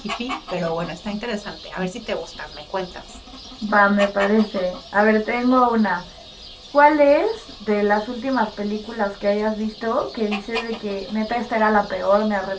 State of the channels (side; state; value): both; identical; correlation 1.00